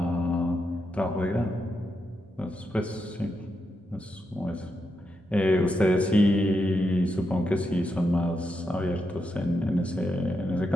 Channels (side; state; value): both; normal; correlation 0.84